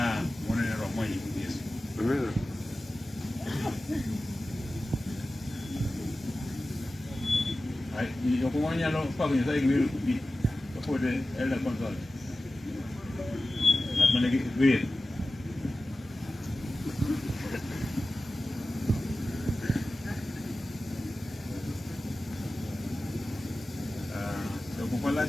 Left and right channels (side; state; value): both; normal; correlation 0.95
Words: monene romo e nying Yesu. Jok manyalo pako Nyasaye gi wer gi kapod Elda Consol. Ng'at mane gi wer. Jok